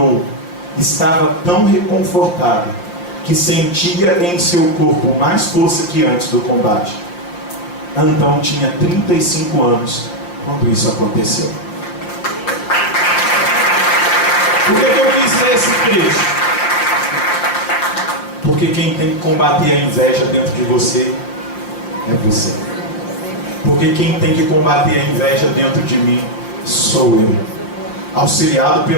Estava tão reconfortado que sentia em seu corpo mais força que antes do combate. Antão tinha 35 anos quando isso aconteceu. Por que eu quis ler esse trecho? Porque quem tem que combater a inveja dentro de você é você. Porque quem tem que combater a inveja dentro de mim sou eu, auxiliado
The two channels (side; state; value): right; late; 5.7 ms